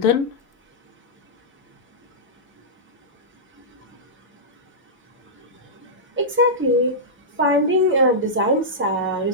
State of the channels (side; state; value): both; normal; correlation -0.13